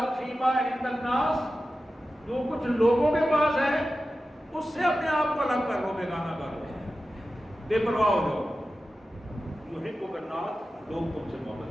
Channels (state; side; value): normal; both; correlation 0.93